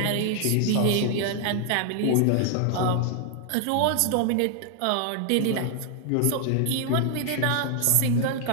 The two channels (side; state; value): both; different; correlation 0.00